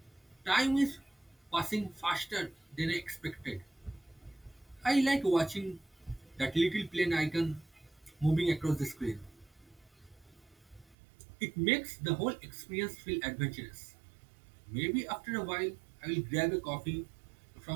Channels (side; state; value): left; drops out; at 11.0 s